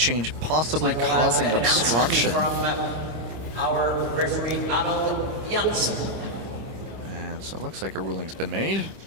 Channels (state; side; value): late; left; 26 ms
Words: possibly causing obstruction. From our referee Arnold Janssen. And so it looks like a ruling's been made.